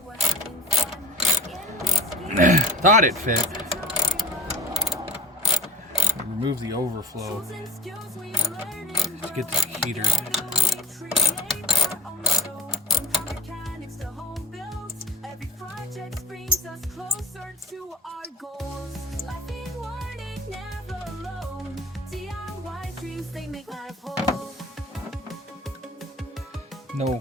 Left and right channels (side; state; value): both; normal; correlation 0.39